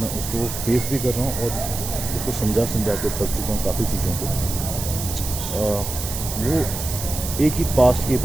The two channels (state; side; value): noise; right; hiss, 6 dB below the sound